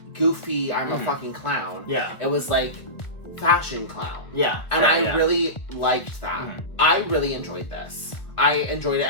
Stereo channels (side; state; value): right; late; 1.2 ms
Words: goofy, I'm a fucking clown. Yeah. It was like fashion clown. Yeah. And I really liked that. I really enjoyed this. I enjoyed it.